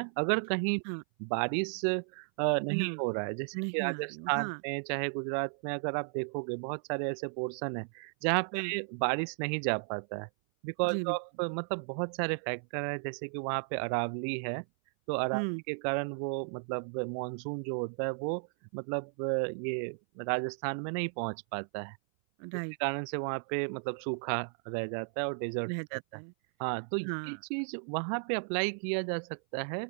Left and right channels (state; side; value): silent; left; 55 dB below the other